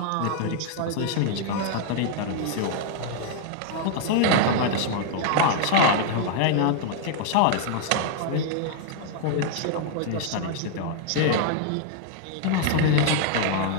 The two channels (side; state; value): both; different; correlation 0.00